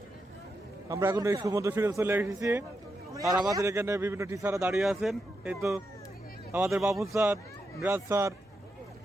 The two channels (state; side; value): normal; both; correlation 0.85